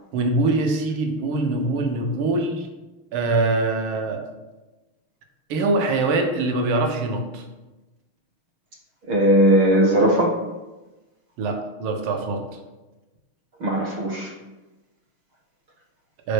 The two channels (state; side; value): late; left; 6.4 ms